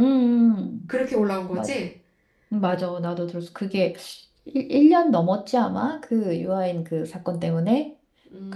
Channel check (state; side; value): identical; both; correlation 1.00